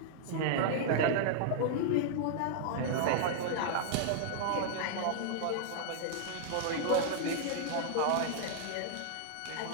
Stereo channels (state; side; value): different; both; correlation -0.01